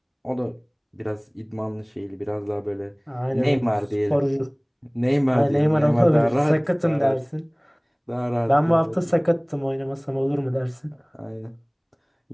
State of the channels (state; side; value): identical; both; correlation 1.00